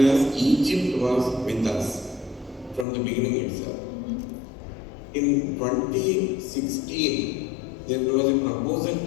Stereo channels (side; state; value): right; drops out; at 2.9 s